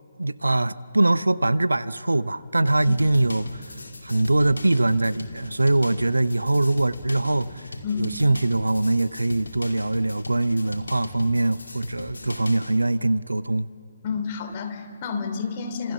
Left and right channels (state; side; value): inverted; both; correlation -0.97